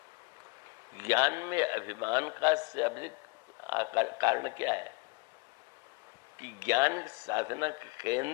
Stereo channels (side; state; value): right; quieter; 27.7 dB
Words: ज्ञान में अभिमान का से अधिक कारण क्या है कि ज्ञान साधना का